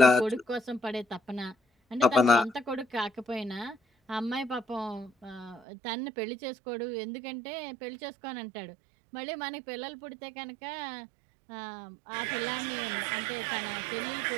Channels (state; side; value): drops out; left; at 5.6 s